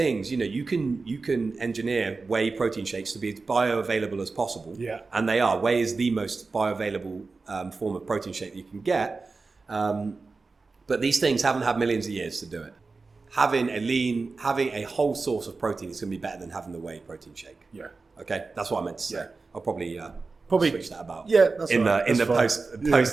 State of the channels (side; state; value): left; quieter; 4.0 dB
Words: you can engineer whey protein shakes to be as bioavailable as possible. Yeah. And they are. Whey is the most bioavailable form of protein shake that you can get. But these things haven't had millions of years to do it. Having a whole source of protein is going to be better than having the whey protein shake. Yeah. Okay, that's what I meant to say. Yeah. I'll probably switch that about. Yeah, that's in right. the